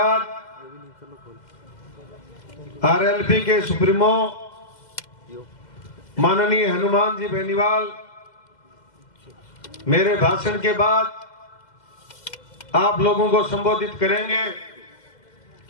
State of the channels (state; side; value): late; right; 2.0 ms